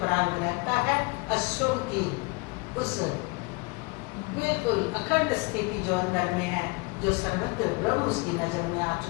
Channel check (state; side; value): quieter; right; 27.2 dB